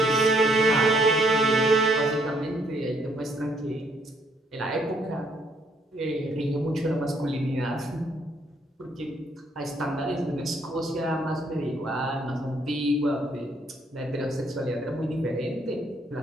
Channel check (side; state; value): both; normal; correlation 0.68